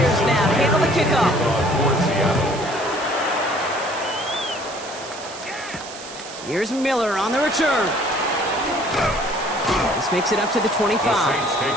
now to handle the kickoff. Here's Miller on the return. This makes it up to the 25. The Saints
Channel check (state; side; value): noise; right; hiss, 14 dB below the sound